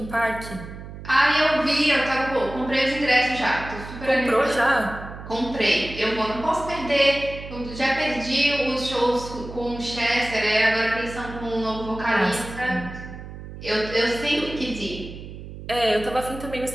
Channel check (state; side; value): noise; right; hum, 12 dB below the sound